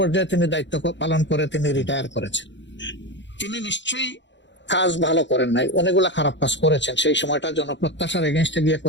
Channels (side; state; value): right; late; 0.53 ms